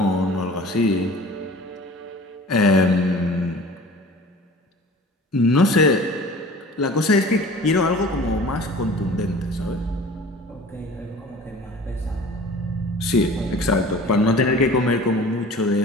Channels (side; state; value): both; normal; correlation 0.43